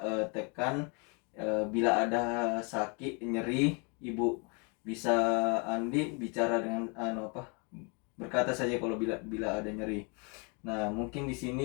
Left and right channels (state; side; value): quieter; right; 33.6 dB